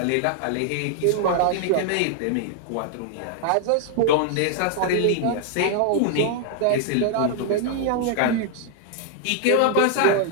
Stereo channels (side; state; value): both; different; correlation 0.00